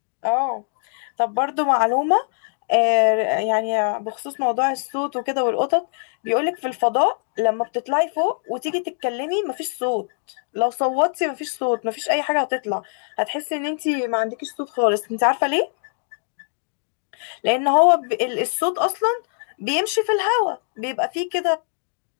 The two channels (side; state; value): right; silent; 64 dB below the other